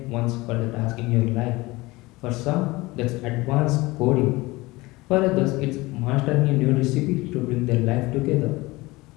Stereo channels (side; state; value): right; quieter; 21.4 dB